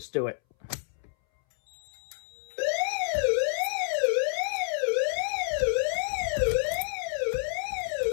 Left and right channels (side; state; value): right; silent; 59 dB below the other